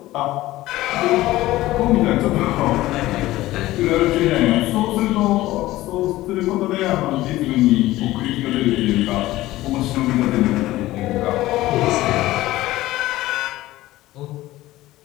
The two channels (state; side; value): quieter; right; 16.7 dB